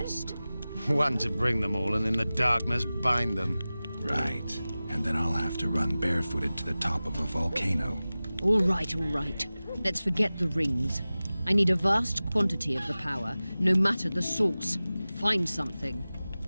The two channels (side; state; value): both; inverted; correlation -0.97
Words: One to bring them all and in the darkness bind them. Right. And then I'll have to run barefooted to the top of a volcano. All right. Let's forget the rings. I need a vast quantity of the power, no matter the source. Find something.